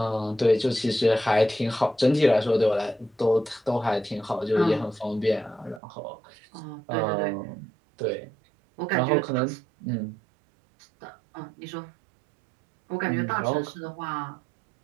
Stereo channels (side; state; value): left; drops out; at 5.8 s